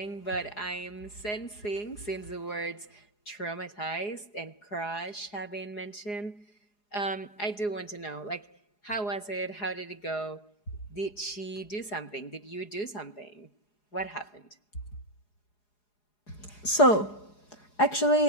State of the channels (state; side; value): late; right; 4.8 ms